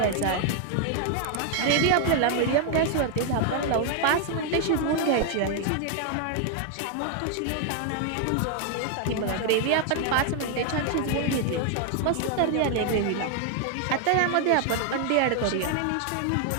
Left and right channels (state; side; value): different; both; correlation 0.00